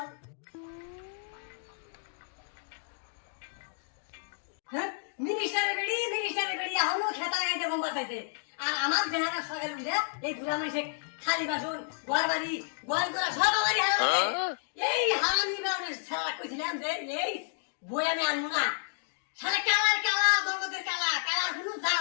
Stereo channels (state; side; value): silent; right; digital silence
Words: হ্যাঁ মিনিস্টারের বেড়ি এখনো খেতা গাইতে কম বাতাইছে। আর আমার দেহাটা সকালে উঠে এই বুড়া মানুষে খালি বাসন ঘর বাড়ি গোয়াল করা সব আমারই এই হারামি বেড়ে সারা কইছিলাম যে এই বই আমি আনবো না। সারা কালা জগতের কালা কোনো